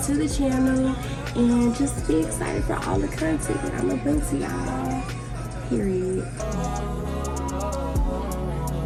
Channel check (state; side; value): identical; both; correlation 1.00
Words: to the channel. And just be excited for all the content that I'm gonna bring to y'all. Period.